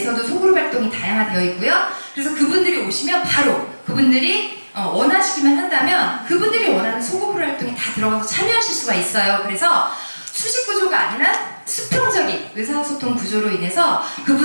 소그룹 활동이 다양화되어 있고요. 그래서 그분들이 오시면 바로 그분들이 원하시기만 한다면 그분들이 원하는 소그룹 활동에 다 들어가서 참여하실 수가 있어요. 그래서 수직 구조가 아니라 수평적인 의사소통 구조로 인해서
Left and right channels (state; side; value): inverted; both; correlation -1.00